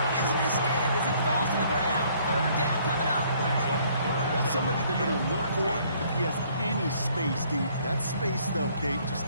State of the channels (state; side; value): inverted; both; correlation -0.62